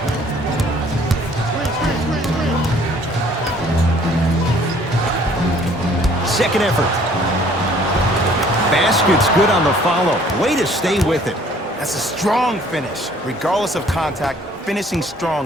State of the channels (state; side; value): normal; both; correlation 0.57